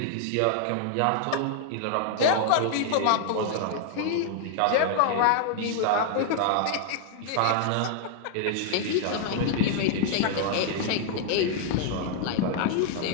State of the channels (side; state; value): both; different; correlation 0.00